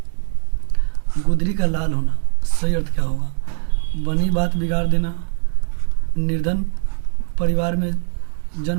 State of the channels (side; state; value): left; silent; 65 dB below the other